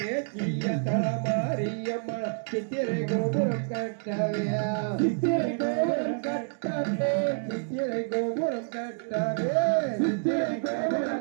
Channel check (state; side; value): silent; left; digital silence